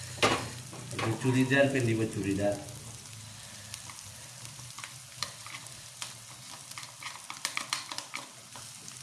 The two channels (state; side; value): identical; both; correlation 1.00